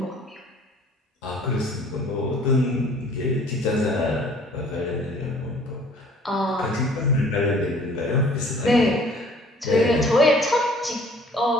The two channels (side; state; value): both; normal; correlation 0.54